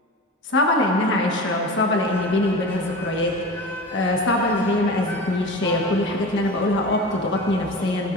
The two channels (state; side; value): normal; both; correlation 0.32